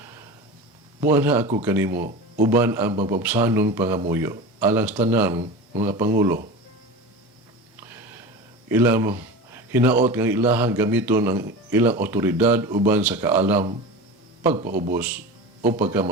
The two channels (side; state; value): both; normal; correlation 0.30